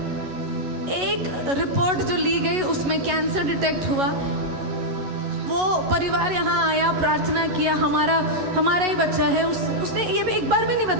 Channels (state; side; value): late; left; 11 ms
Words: एक रिपोर्ट जो ली गई उसमें कैंसर डिटेक्ट हुआ। वो परिवार यहाँ आया, प्रार्थना किया, हमारा ही बच्चा है। उसने ये भी एक बार भी नहीं